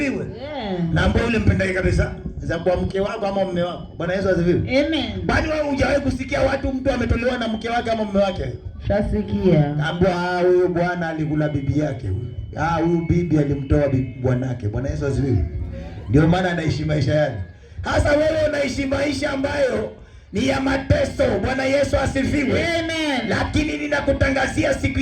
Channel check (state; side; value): identical; both; correlation 1.00